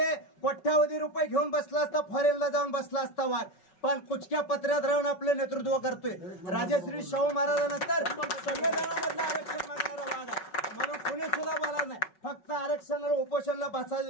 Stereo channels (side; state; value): right; late; 5.4 ms